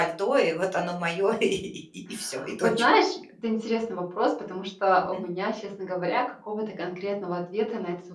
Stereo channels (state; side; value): identical; both; correlation 1.00